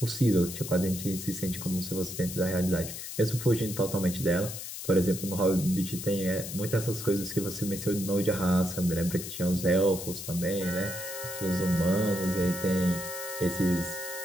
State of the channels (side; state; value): left; noise; hiss, 8 dB below the sound